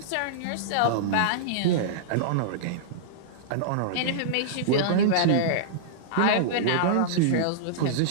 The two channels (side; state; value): both; different; correlation -0.03